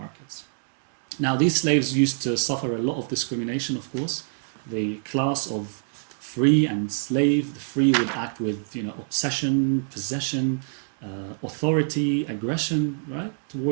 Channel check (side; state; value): left; silent; digital silence